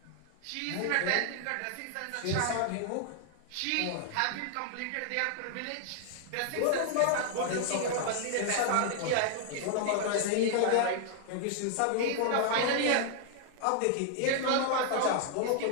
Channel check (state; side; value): different; both; correlation 0.00